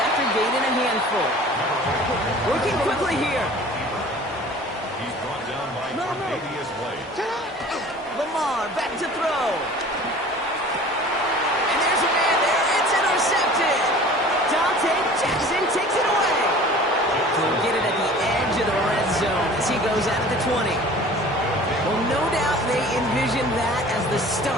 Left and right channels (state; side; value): normal; both; correlation 0.44